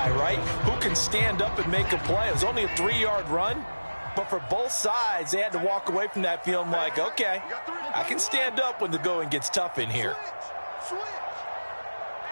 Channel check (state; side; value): inverted; both; correlation -1.00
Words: right? Who can stand up and make a play. It was only a 3-yard run, but for both sides, they had to walk away from that feeling like, okay, I can stand up when the going gets tough in here.